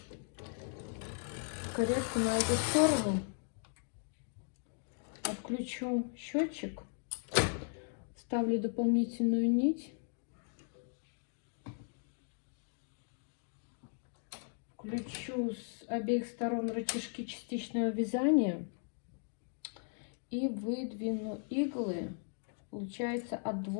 каретку на эту сторону. Отключу счетчик, ставлю дополнительную нить, включу с обеих сторон рычажки частичного вязания и выдвину иглы, получается, от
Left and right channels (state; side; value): silent; right; 53 dB below the other